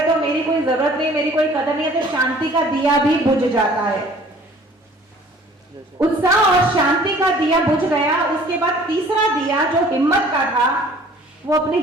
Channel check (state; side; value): normal; both; correlation 0.52